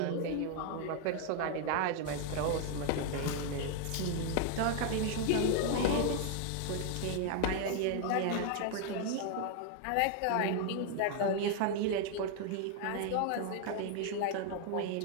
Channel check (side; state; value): both; different; correlation 0.00